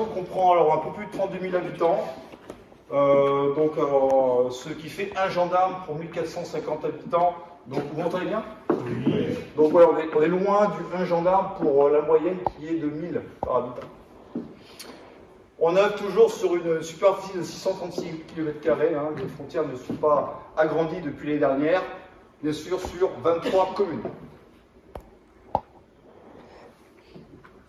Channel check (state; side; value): identical; both; correlation 1.00